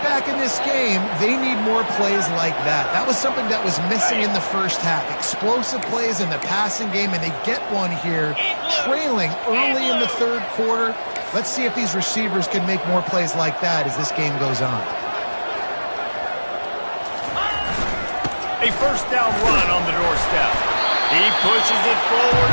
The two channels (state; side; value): inverted; both; correlation -1.00